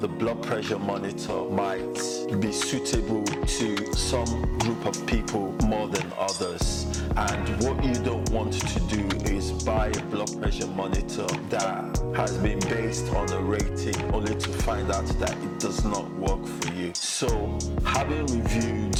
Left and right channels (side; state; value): both; identical; correlation 1.00